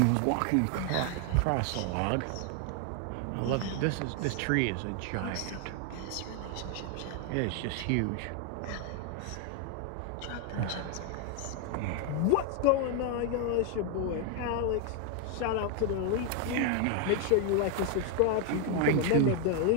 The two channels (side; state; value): both; different; correlation 0.01